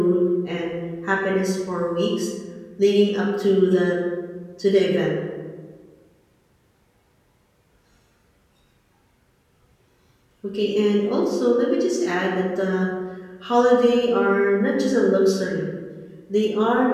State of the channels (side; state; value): both; identical; correlation 1.00